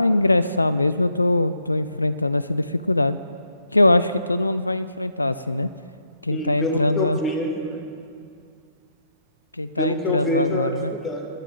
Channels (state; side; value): inverted; both; correlation -0.75